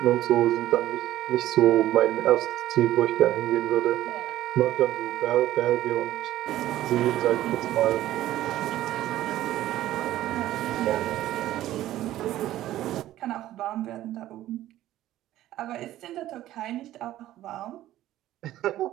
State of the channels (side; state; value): left; quieter; 14.0 dB